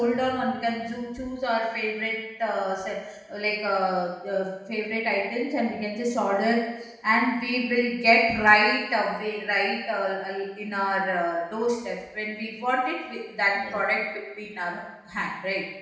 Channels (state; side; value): identical; both; correlation 1.00